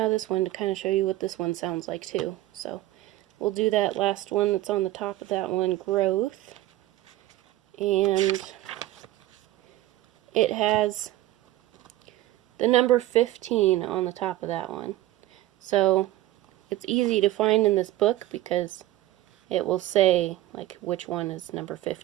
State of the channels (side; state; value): left; quieter; 15.6 dB